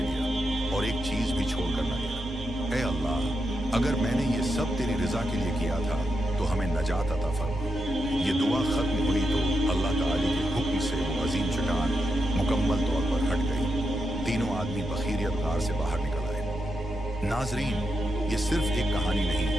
और एक चीज भी छोड़कर न गया। ए अल्लाह, अगर मैंने ये सब तेरी रजा के लिए किया था तो हमें नजात अता फरमा। ये दुआ खत्म हुई तो अल्लाह ताला के हुक्म से वो अजीम चट्टान मुकम्मल तौर पर हट गई। तीनों आदमी बखीरियत गार से बाहर निकल आए। नाजरीन, ये सिर्फ एक कहानी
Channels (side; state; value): both; normal; correlation 0.85